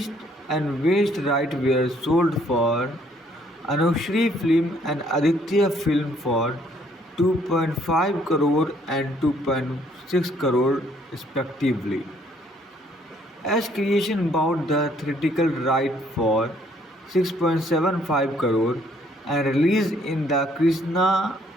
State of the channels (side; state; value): both; normal; correlation 0.65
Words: and West rights were sold for Anushri Film and Aditya Film for 2.5 crore and 2.6 crore respectively. As Creation bought the theatrical right for 6.75 crore and released in the Krishna